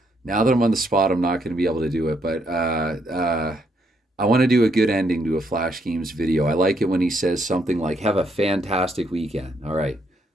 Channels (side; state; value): both; normal; correlation 0.74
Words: Now that I'm on the spot, I'm not going to be able to do it. But I want to do a good ending to a Flash Games video. I like it when he says something like, have a fantastic weekend. All right.